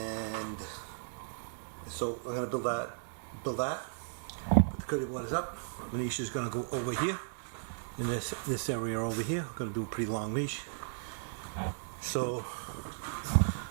so I'm going to build that. But the curdy board is up. The niche is going to go over here in this area over here. I'm going to do a pretty long niche. So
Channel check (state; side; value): silent; left; digital silence